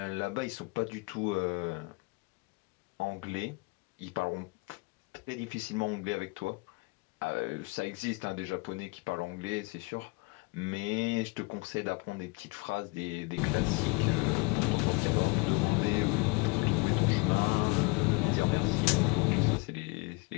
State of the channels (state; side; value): quieter; right; 27.8 dB